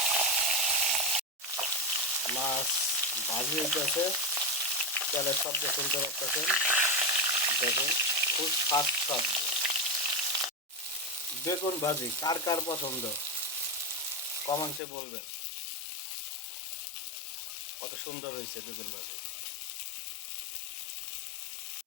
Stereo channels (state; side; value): drops out; right; at 14.8 s